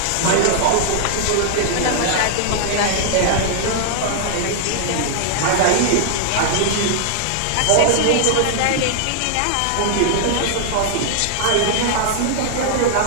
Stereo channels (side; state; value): both; different; correlation -0.01